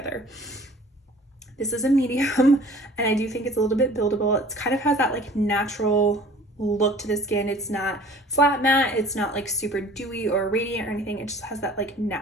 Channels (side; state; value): both; normal; correlation 0.48